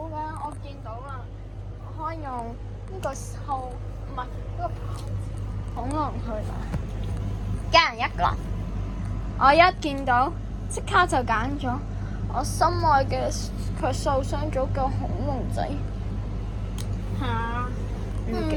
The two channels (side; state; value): both; identical; correlation 1.00